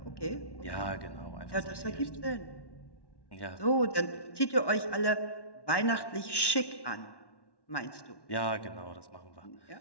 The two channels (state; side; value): late; right; 1.1 ms